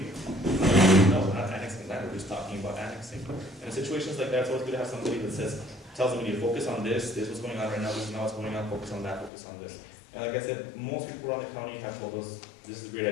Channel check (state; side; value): drops out; right; at 9.3 s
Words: you? No, we're not annexing land, we're just talking about annexing. And in situations like that, it's always good to have somebody that tells the media, focus on this is what's going on right now, this is not what's going on, focus on that, focus on this. And like I said, most people around the county have told us, this is a